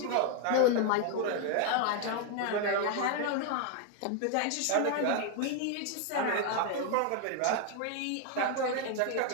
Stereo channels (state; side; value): different; both; correlation 0.00